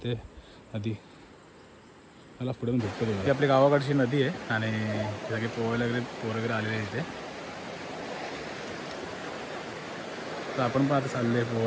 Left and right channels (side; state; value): both; identical; correlation 1.00